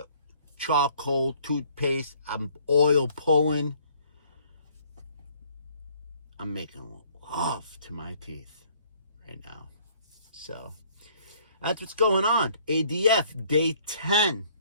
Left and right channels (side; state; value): both; inverted; correlation -0.60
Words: charcoal toothpaste, I'm oil pulling. I'm making love to my teeth right now. So that's what's going on. ADF day 10.